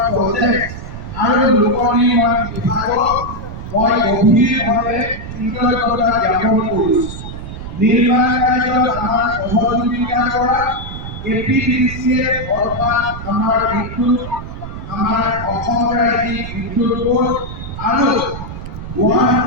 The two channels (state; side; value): noise; right; rumble, 9 dB below the sound